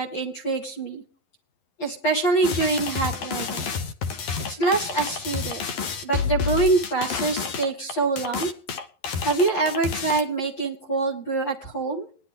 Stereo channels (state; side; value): late; right; 11 ms